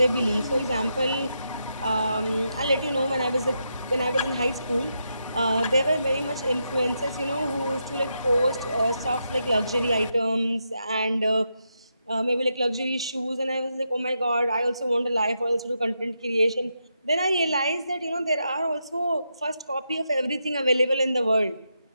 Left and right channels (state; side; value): inverted; both; correlation -0.83